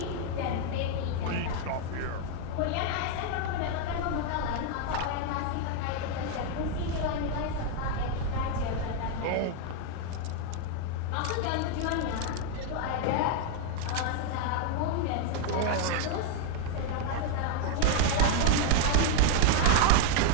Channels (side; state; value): both; different; correlation 0.01